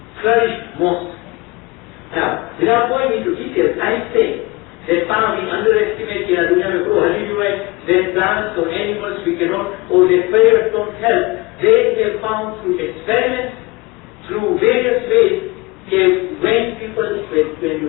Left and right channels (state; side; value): quieter; right; 24.0 dB